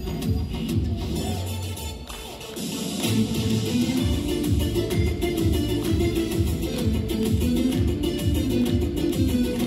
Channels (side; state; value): both; identical; correlation 1.00